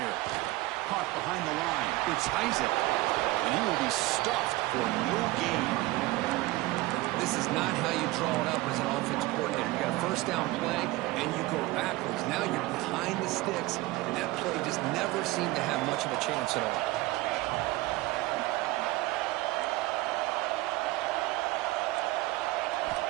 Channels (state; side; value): quieter; left; 19.5 dB